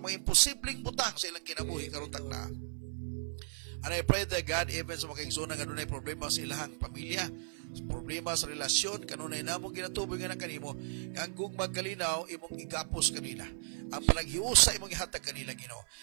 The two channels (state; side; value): silent; left; 54 dB below the other